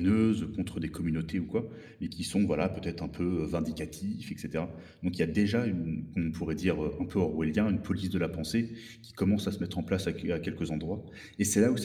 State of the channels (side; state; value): both; identical; correlation 1.00